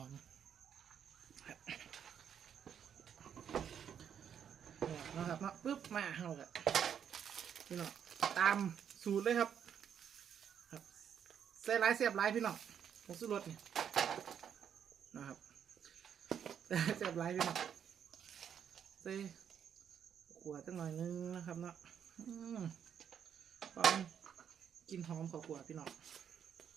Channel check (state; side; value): quieter; left; 8.4 dB